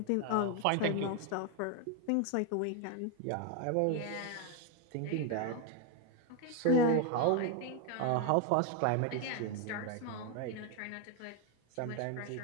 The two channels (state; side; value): different; both; correlation 0.02